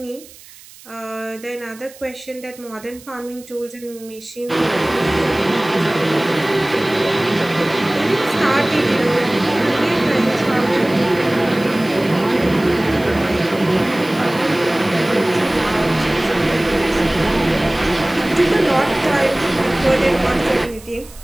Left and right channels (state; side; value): noise; right; hiss, 21 dB below the sound